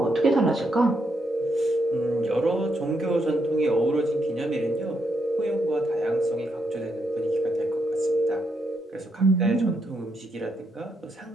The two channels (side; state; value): both; normal; correlation 0.79